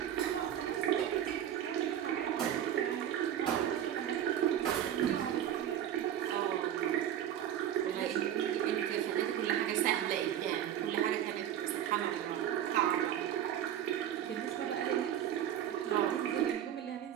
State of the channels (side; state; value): left; quieter; 10.7 dB